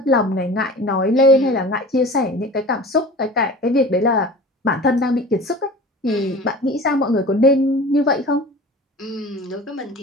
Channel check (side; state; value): both; normal; correlation 0.38